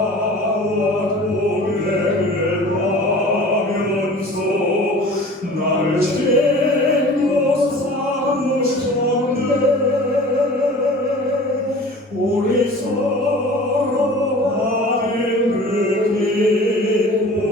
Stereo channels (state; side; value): normal; both; correlation 0.43